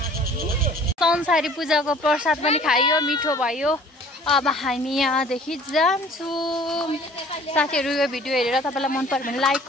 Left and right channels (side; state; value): both; normal; correlation 0.51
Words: संसारी पूजाको प्रसाद पनि खाइयो मिठो भयो अब हामी यहाँदेखि जान्छौँ साथीहरू यो भिडियो हेरेर तपाईँलाई मन पर्यो भने लाइक